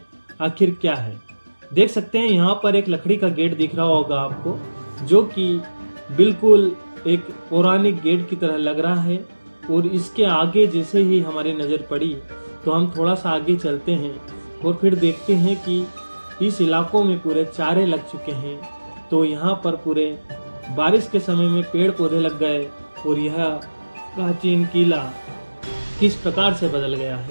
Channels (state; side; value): inverted; both; correlation -1.00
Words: आखिर क्या है। देख सकते हैं यहाँ पर एक लकड़ी का गेट दिख रहा होगा आपको, जो कि बिल्कुल एक पौराणिक गेट की तरह लग रहा है। और इसके आगे जैसे ही हमारी नज़र पड़ी तो हम थोड़ा सा आगे चलते हैं और फिर देखते हैं कि इस इलाकों में पूरे चारे लग चुके हैं। तो यहाँ पर पूरे बारिश के समय में पेड़ पौधे लग गए और यह प्राचीन किला किस प्रकार से बदल गया